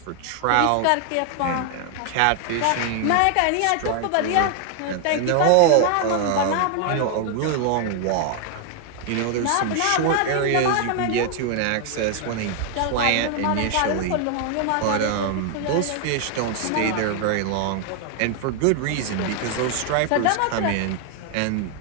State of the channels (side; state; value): both; different; correlation 0.00